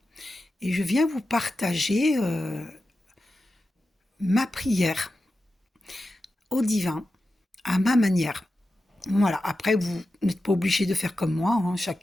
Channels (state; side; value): normal; both; correlation 0.92